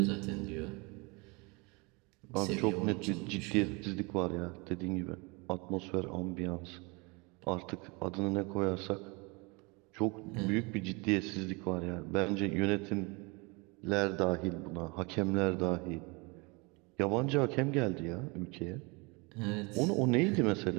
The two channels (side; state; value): left; quieter; 28.4 dB